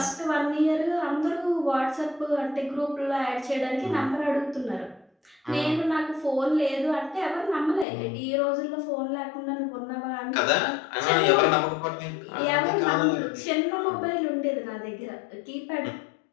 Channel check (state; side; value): drops out; right; at 7.9 s